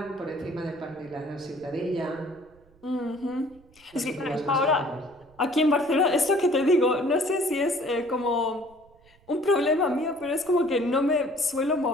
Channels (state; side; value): noise; right; rumble, 29 dB below the sound